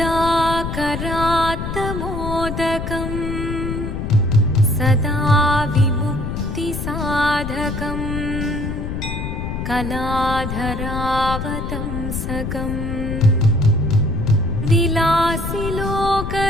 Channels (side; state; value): left; noise; rumble, 5 dB below the sound